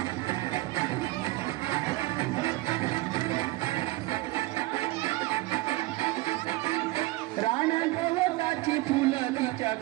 रान गवताची फुलं तिच्या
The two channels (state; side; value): quieter; left; 20.0 dB